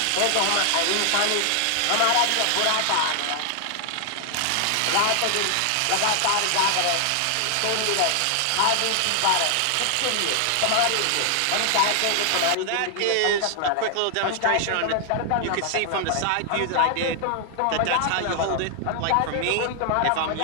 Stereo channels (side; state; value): both; different; correlation 0.00